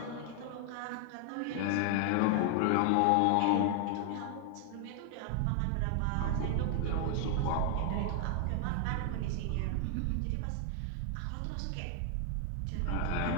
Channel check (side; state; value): both; different; correlation 0.00